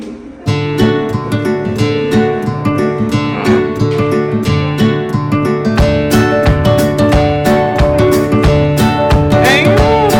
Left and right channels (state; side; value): identical; both; correlation 1.00